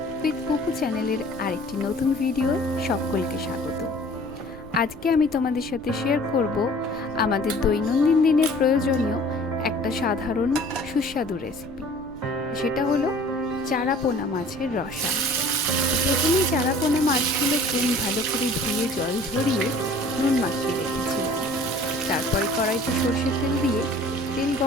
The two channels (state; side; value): noise; right; rumble, 19 dB below the sound